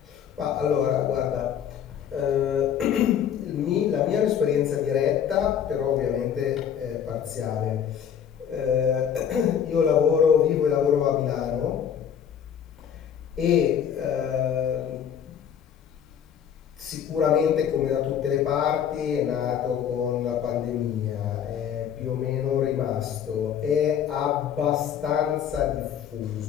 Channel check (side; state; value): right; quieter; 8.6 dB